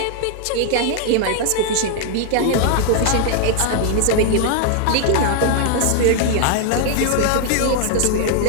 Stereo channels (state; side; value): different; both; correlation 0.00